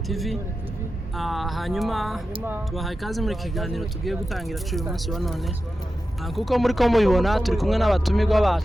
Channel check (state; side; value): normal; both; correlation 0.92